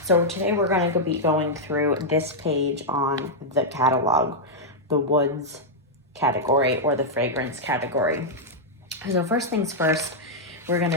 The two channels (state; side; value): normal; both; correlation -0.04